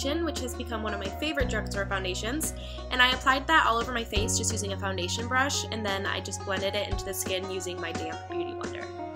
which has become one of my favorite drugstore foundations, and I applied that all over my face just using a foundation brush, and then I just blended it into the skin using my damp beauty blender.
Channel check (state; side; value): identical; both; correlation 1.00